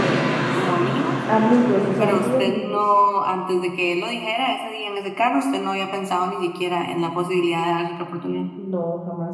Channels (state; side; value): identical; both; correlation 1.00